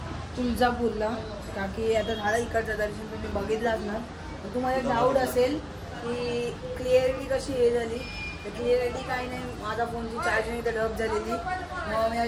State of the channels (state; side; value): identical; both; correlation 1.00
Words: तुळजापूरला, का की आता झालं इकडचं दर्शन तुम्ही बघितलं असणार. तर तुम्हाला डाऊट असेल की क्लिअरिटी कशी हे झाली, तर क्लिअरिटी काही नाही, माझा फोनची चार्जिंग इथं डब झालेली. मग मी